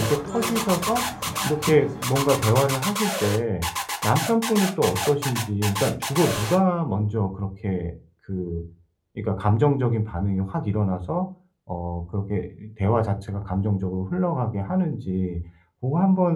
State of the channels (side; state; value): both; identical; correlation 1.00